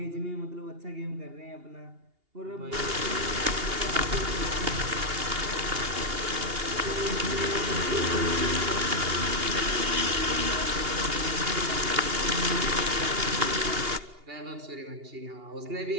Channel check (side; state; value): left; late; 2.8 ms